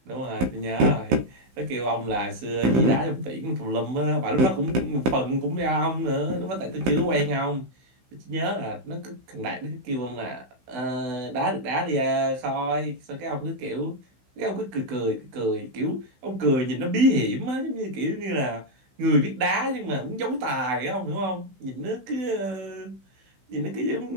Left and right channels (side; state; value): left; late; 16 ms